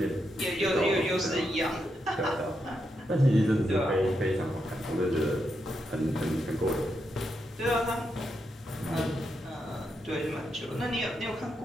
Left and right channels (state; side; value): normal; both; correlation 0.83